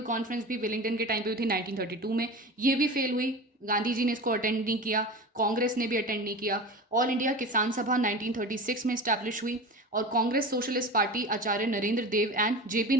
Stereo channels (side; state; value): both; normal; correlation 0.31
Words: कॉन्फ्रेंस भी विलिंगटन के टाइम पे हुई थी 1932 में, ये भी फेल हुई। गांधी जी ने इसको अटेंड नहीं किया, कांग्रेस ने भी अटेंड नहीं किया। ऑल इंडिया किसान सभा 1936 में इस्टेब्लिश हुई और Congress Socialist Party Acharya Narendra Dev and JP